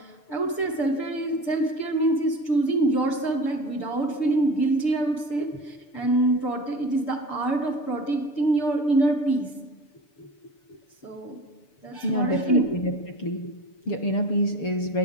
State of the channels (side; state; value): right; late; 6.8 ms